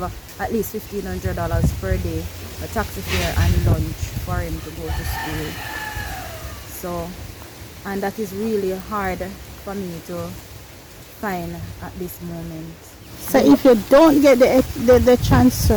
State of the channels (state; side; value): identical; both; correlation 1.00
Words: at least $1,500 per day, a taxi fare and lunch for him to go to school. So, and that is really hard for me to find at this moment. So if you don't get the